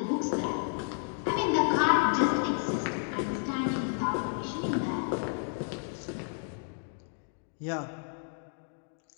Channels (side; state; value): right; silent; 57 dB below the other